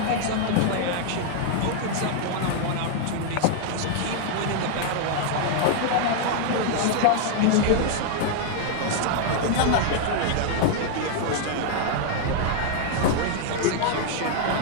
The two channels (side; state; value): both; different; correlation 0.00